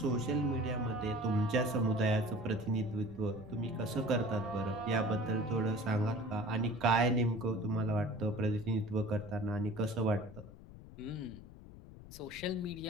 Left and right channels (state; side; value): noise; left; rumble, 16 dB below the sound